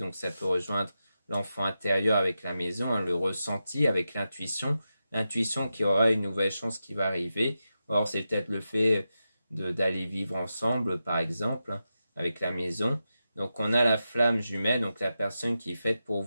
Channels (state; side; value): inverted; both; correlation -0.90